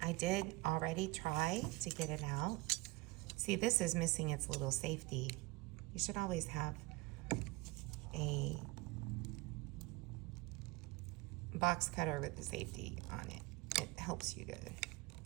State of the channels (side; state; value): left; quieter; 22.3 dB